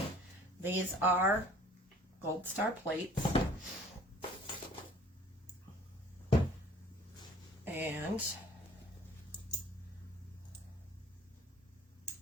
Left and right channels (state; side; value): normal; both; correlation 0.52